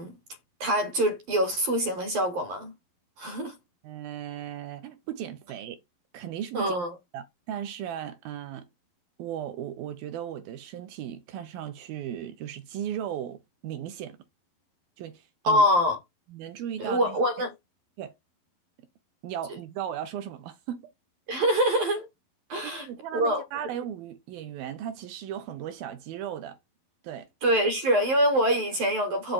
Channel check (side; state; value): left; late; 11 ms